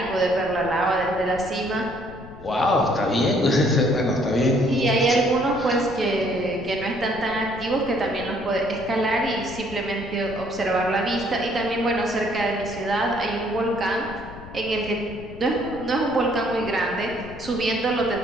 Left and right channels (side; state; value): left; noise; rumble, 16 dB below the sound